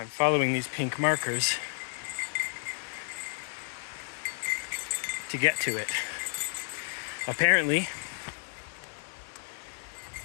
following these pink markers to get to it. Apparently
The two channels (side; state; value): right; silent; digital silence